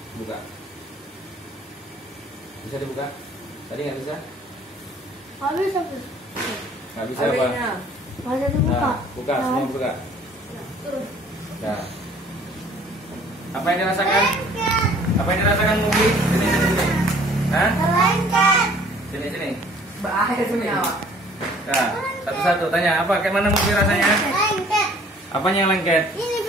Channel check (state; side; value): normal; both; correlation 0.55